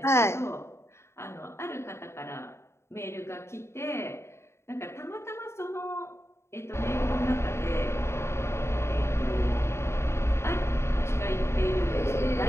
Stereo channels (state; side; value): late; right; 0.13 ms